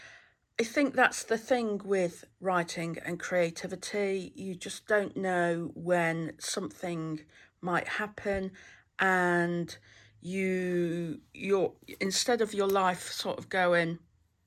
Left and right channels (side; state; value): both; identical; correlation 1.00